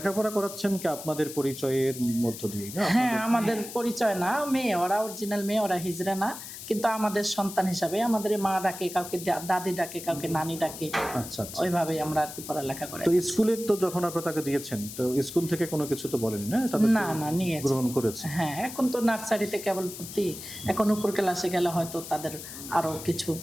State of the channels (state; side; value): noise; left; hiss, 11 dB below the sound